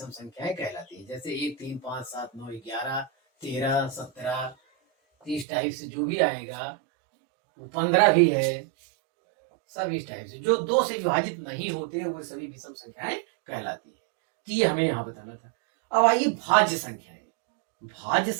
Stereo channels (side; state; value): left; drops out; at 5.5 s